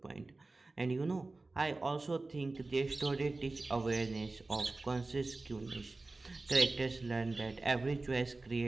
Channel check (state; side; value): quieter; left; 3.3 dB